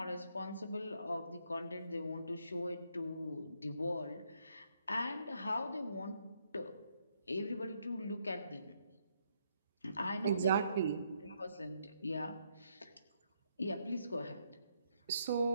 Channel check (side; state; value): both; inverted; correlation -0.74